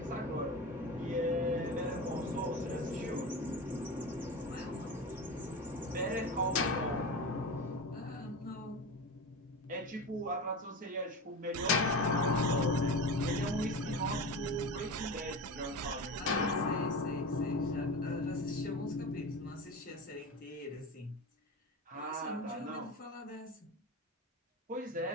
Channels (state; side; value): normal; both; correlation 0.26